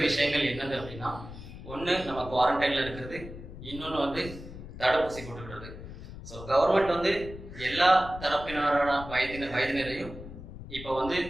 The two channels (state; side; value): noise; left; rumble, 13 dB below the sound